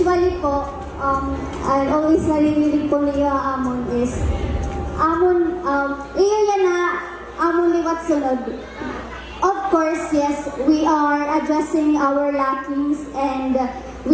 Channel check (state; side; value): identical; both; correlation 1.00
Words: po, I always narinig po niyo amon is, iyo yan na, amon liwat sunod. Of course, yes, we are addressing our lackings and